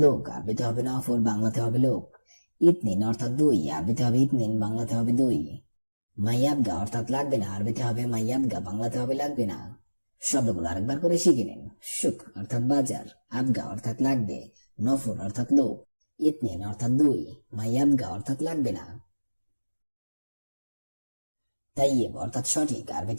লোক, আরবিতে হবে নফর, বাংলাতে হবে লোক। ইতনিন অর্থাৎ দুই, আরবিতে হবে ইতনিন, বাংলাতে হবে দুই। মাইয়াবগা অর্থাৎ লাগবে না, আরবিতে হবে মাইয়াবগা, বাংলাতে হবে লাগবে না। শব্দগুলো আরেকবার করে শিখে নিন। সুক অর্থাৎ বাজার, আবগা অর্থাৎ লাগবে, নফর অর্থাৎ লোক, ইতনিন অর্থাৎ দুই, মাইয়াবগা অর্থাৎ লাগবে না। তাইয়েব অর্থাৎ সঠিক,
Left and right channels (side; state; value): both; inverted; correlation -1.00